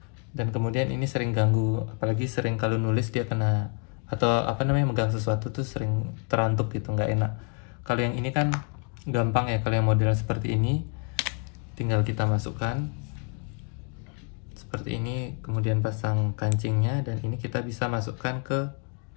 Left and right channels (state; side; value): quieter; right; 38.9 dB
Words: dan kemudian ini sering ganggu, apalagi sering kalau nulis dia kena atau apa namanya megang sesuatu tuh sering terantuk gitu, nggak enak. Kalau yang ini kan gampang ya, kalau yang model seperti ini tinggal kita masukkan seperti ini, kemudian pasang kancingnya, dan ini kita bisa masukkan ke